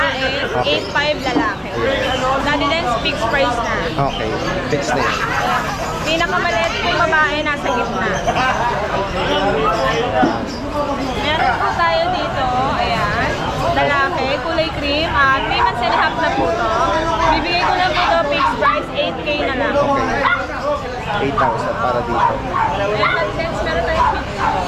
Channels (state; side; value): identical; both; correlation 1.00